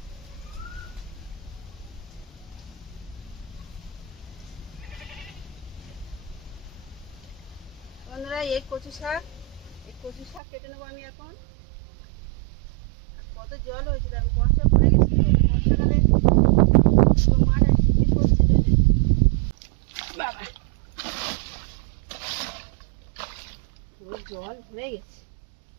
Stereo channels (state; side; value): drops out; left; at 10.4 s